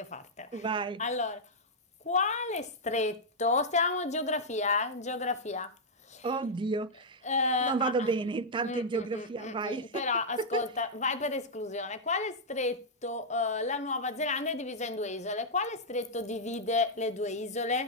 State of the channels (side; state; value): both; normal; correlation -0.06